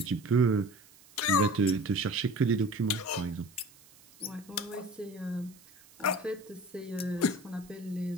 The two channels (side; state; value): right; noise; hiss, 25 dB below the sound